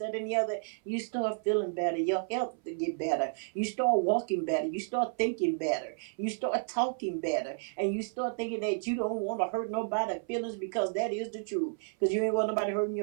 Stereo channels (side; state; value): left; silent; 57 dB below the other